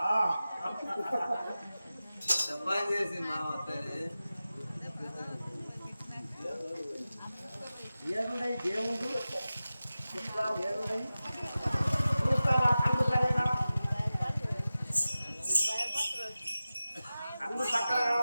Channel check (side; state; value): both; inverted; correlation -0.95